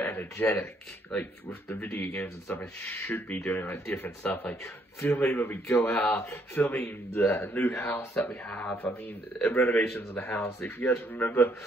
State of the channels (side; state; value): both; normal; correlation 0.69